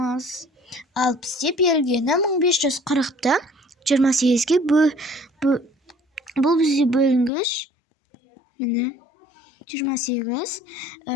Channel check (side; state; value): right; drops out; at 7.3 s